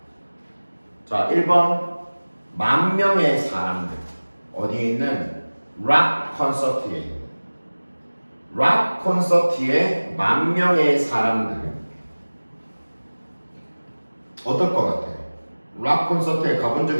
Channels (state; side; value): inverted; both; correlation -1.00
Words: 자, 1번 10,000명의 사람들, 어디에 있는 락 콘서트에 있는, 락 콘서트에 10,000명의 사람들. 어떨 것 같아? 락 콘서트에 가본 적